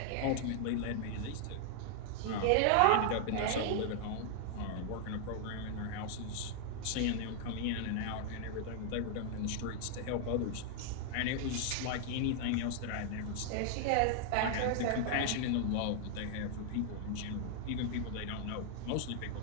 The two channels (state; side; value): different; both; correlation 0.00